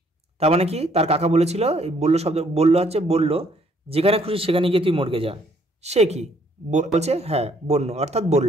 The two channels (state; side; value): normal; both; correlation 0.66